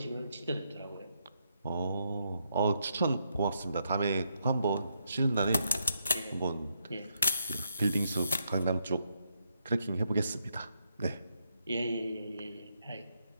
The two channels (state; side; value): inverted; both; correlation -0.78